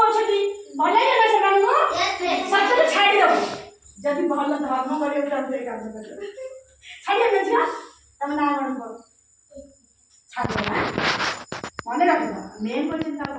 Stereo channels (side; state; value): both; identical; correlation 1.00